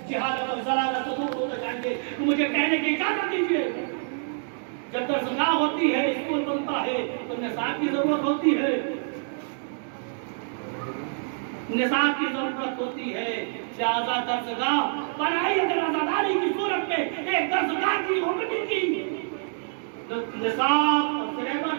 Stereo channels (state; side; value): silent; left; digital silence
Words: جہالت اور ضلالت سے دور ہوتے جائیں گے. تو مجھے کہنے کی اجازت دیجیے، جب درسگاہ ہوتی ہے، اسکول بنتا ہے تو نصاب کی ضرورت ہوتی ہے، نصاب کی ضرورت ہوتی ہے. لہذا درسگاہ بنائی اگر عزاداری کی صورت میں ایک درسگاہ کی ہوگی کی نصاب اور سلیبس